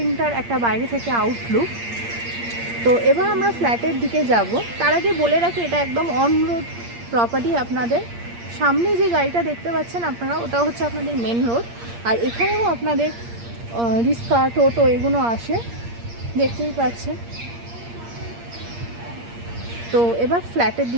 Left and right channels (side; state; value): left; late; 8.6 ms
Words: একটা বাইরে থেকে আউটলুক। তো এবার আমরা ফ্ল্যাটের দিকে যাব। তার আগে বলে রাখি, এটা একদম অন রোড প্রপার্টি। আপনাদের সামনে যে গাড়িটা দেখতে পাচ্ছেন আপনারা, ওটা হচ্ছে আপনাদের মেন রোড। আর এখানেও আপনাদের রিক্সা, টোটো এগুলো আসে, দেখতেই পাচ্ছেন। তো এবার ফ্ল্যাটের